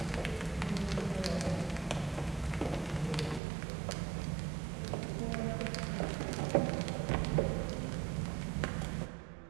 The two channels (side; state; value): left; drops out; at 3.4 s